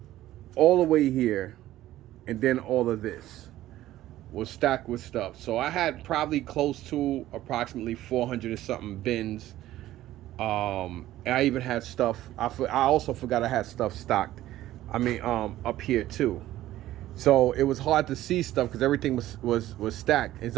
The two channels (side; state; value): left; quieter; 14.5 dB